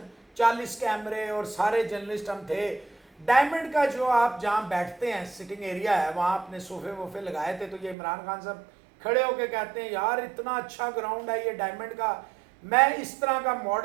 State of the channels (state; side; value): drops out; left; at 8.0 s